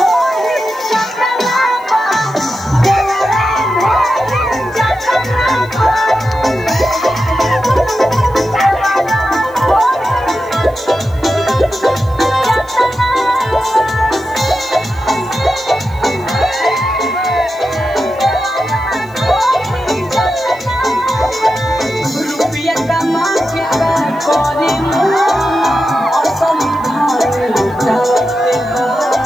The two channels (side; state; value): left; noise; hiss, 28 dB below the sound